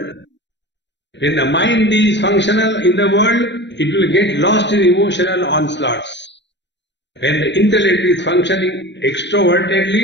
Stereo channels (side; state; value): right; late; 0.52 ms